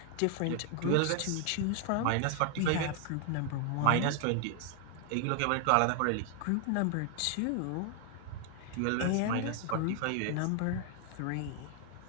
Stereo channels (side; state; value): both; different; correlation 0.00